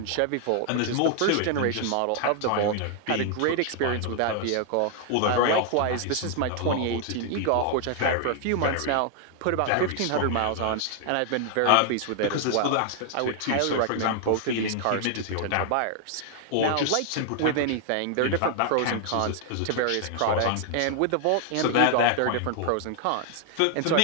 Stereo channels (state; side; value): different; both; correlation 0.00